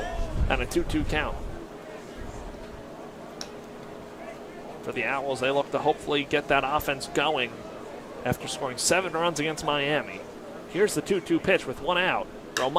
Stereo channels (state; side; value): identical; both; correlation 1.00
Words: And a 2-2 count. For the Owls, they look to hopefully get that offense going after scoring 7 runs against Miami. Here's the 2-2 pitch with 1 out.